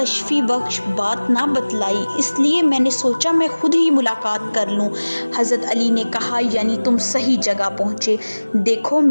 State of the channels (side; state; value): both; inverted; correlation -1.00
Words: بخش بات نہ بتلائی، اس لیے میں نے سوچا میں خود ہی ملاقات کر لوں۔ حضرت علی نے کہا یعنی تم صحیح جگہ پہنچے، دیکھو